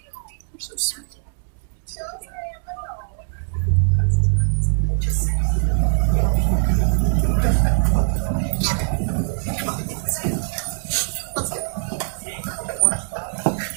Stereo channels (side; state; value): left; silent; digital silence